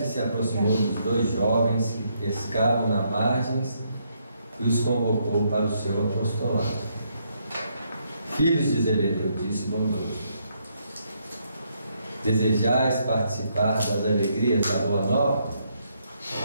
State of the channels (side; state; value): both; inverted; correlation -0.75